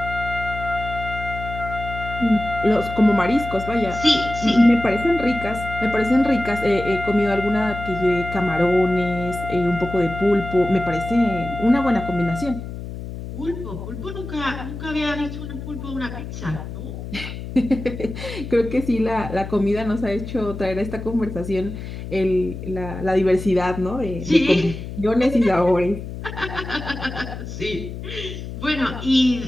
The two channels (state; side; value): noise; left; hum, 9 dB below the sound